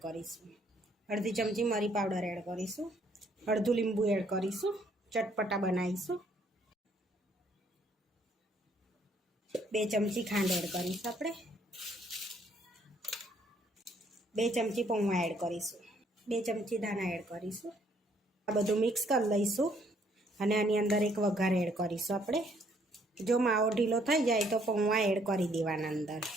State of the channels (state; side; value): normal; both; correlation 0.66